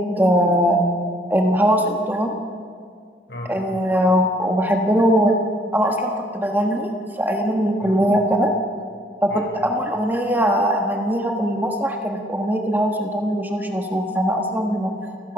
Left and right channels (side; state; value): both; normal; correlation 0.63